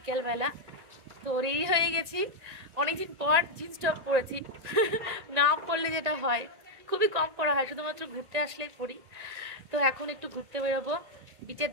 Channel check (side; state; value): left; late; 1.9 ms